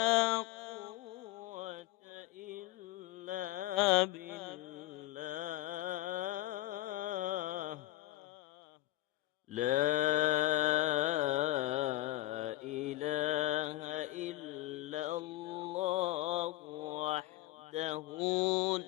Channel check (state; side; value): quieter; right; 16.6 dB